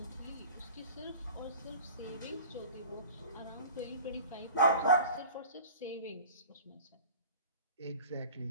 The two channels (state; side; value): inverted; both; correlation -0.41